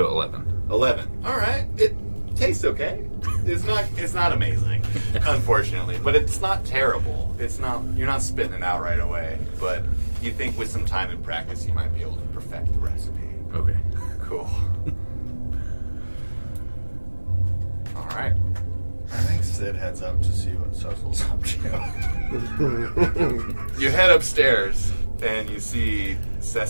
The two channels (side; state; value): both; inverted; correlation -1.00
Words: 11. 11. All right. It tastes okay. It's not amazing, unfortunately, but it's not terrible. It's not. You're not spitting it out right away, but you think with some time and practice, you might be able to perfect the recipe. Okay. Cool. All right. I think Sid heads up to see what Cecil's up to. You head upstairs and you see